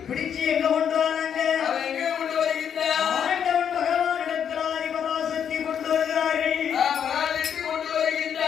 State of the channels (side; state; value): right; quieter; 8.3 dB